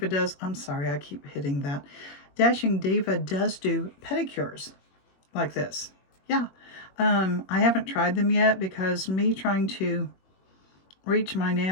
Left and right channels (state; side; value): late; right; 21 ms